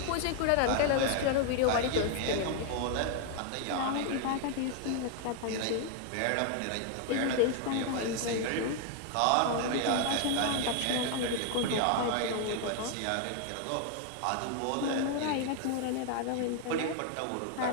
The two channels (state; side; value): different; both; correlation 0.00